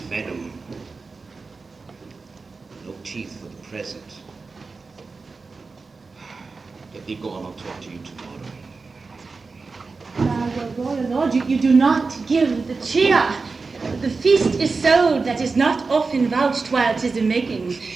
venom. teeth for the present. Let me go on, I'll talk to you tomorrow. Royal Lord, you do not give the cheer. The feast is so that is not often vouched while 'tis a making.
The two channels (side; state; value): left; quieter; 4.2 dB